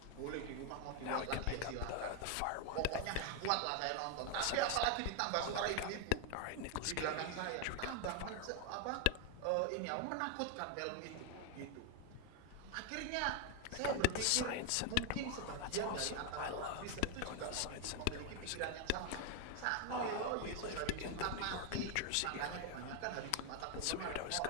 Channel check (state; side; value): different; both; correlation 0.01